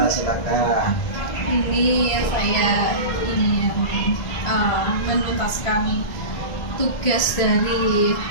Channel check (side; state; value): right; late; 1.6 ms